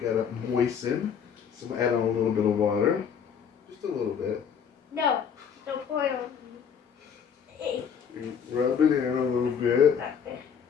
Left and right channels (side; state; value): right; quieter; 7.3 dB